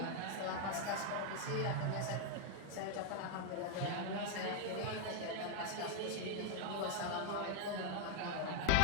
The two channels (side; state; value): both; different; correlation 0.00